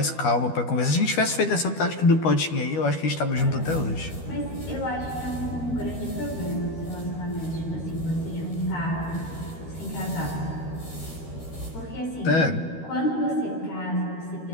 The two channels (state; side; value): late; right; 13 ms